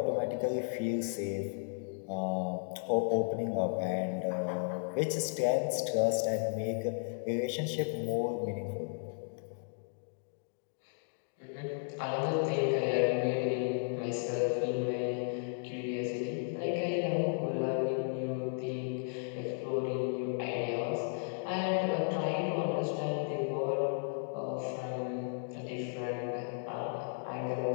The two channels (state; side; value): silent; right; digital silence